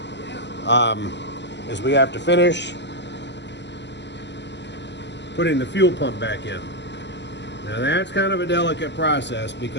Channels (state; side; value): late; right; 0.51 ms